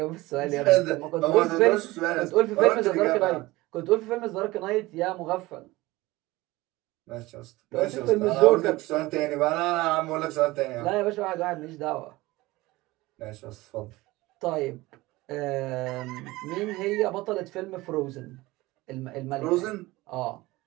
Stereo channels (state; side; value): quieter; left; 19.8 dB